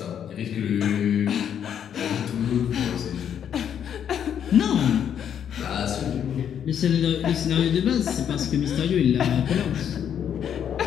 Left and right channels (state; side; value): quieter; right; 8.9 dB